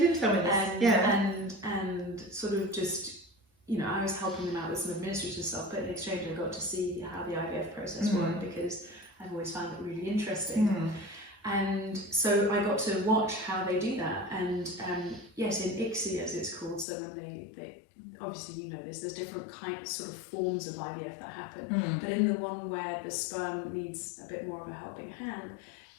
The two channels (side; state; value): right; drops out; at 16.9 s